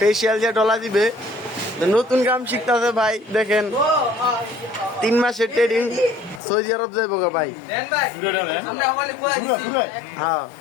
যে ডলা দিবে নতুন কাম শিখতেছে ভাই। দেখেন 3 মাসের ট্রেডিং সৌদি আরব যাইব গা ভাই। হ্যাঁ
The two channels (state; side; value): drops out; right; at 6.4 s